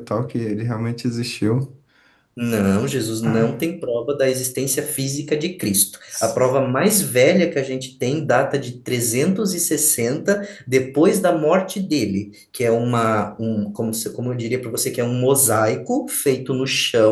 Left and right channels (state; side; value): identical; both; correlation 1.00